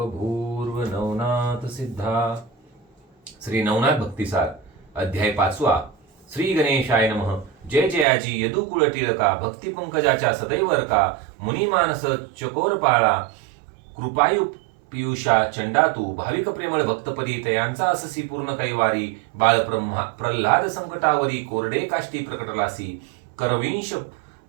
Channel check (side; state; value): left; drops out; at 8.1 s